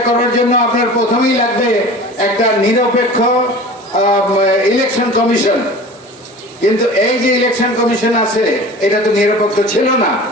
করার জন্য আপনার প্রথমেই লাগবে একটা নিরপেক্ষ ইলেকশন কমিশন। কিন্তু এই যে ইলেকশন কমিশন আছে, এটা তো নিরপেক্ষ ছিল না।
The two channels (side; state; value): both; normal; correlation 0.39